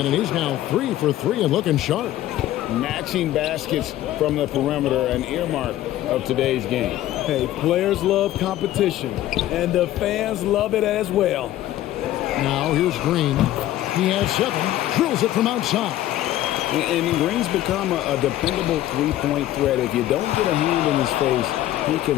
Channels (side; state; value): right; quieter; 13.8 dB